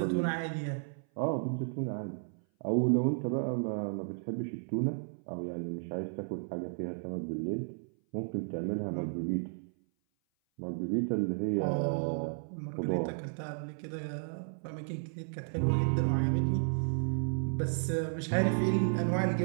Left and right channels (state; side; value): silent; left; 56 dB below the other